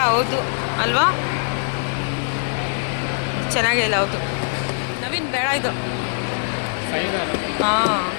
ಹೌದು ಅಲ್ವಾ, ಚೆನ್ನಾಗಿಲ್ಲ, ಹೌದು ನವೀನ್ ಬೇಡ ಇದು. ಹಾಂ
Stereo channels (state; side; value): silent; right; digital silence